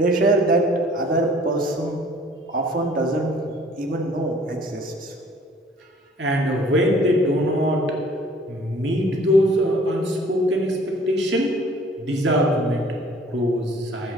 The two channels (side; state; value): both; normal; correlation 0.54